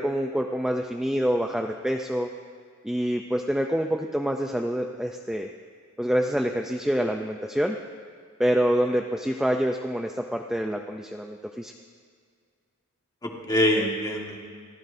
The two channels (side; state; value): both; normal; correlation 0.84